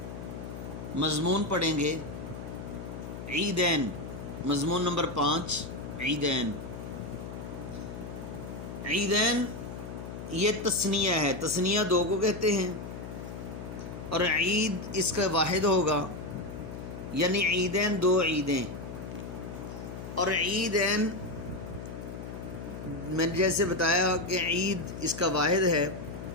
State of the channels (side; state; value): left; noise; hum, 9 dB below the sound